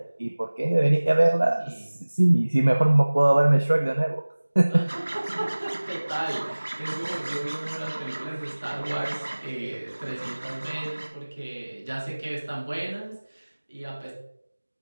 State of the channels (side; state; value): both; inverted; correlation -1.00